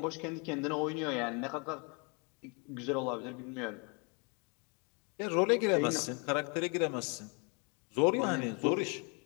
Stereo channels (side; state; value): right; quieter; 33.9 dB